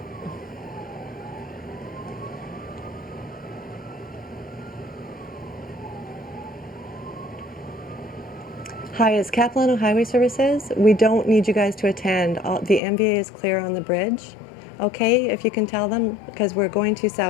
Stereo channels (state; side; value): drops out; right; at 12.8 s